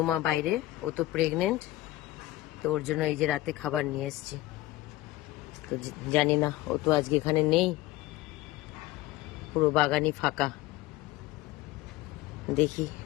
বাইরে, ও তো প্রেগনেন্ট, তো ওর জন্য এই যে রাতে খাবার নিয়ে এসেছি। তো জানি না, ও তো আজকে এখানে নেই, পুরো বাগানই ফাঁকা। দেখি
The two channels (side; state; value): right; quieter; 16.9 dB